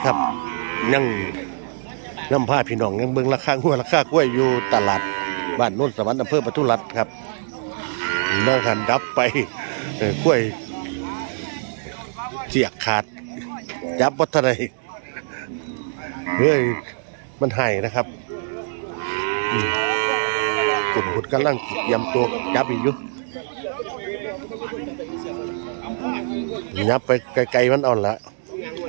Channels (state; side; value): silent; left; digital silence